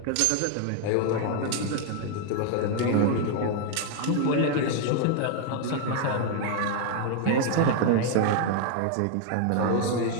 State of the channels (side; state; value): both; different; correlation 0.01